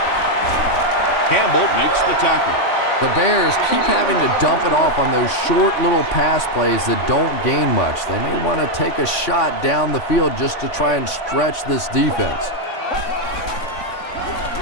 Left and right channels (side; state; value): right; late; 3.7 ms